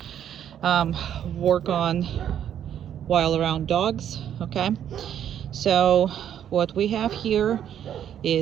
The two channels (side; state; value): left; quieter; 9.8 dB